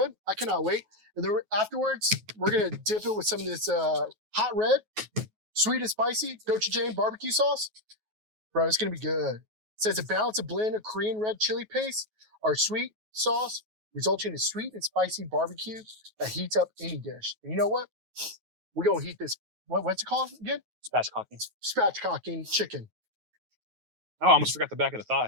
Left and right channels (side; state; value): left; late; 9.3 ms